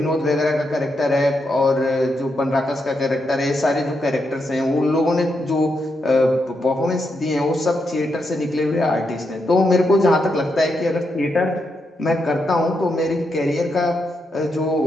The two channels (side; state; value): both; normal; correlation 0.82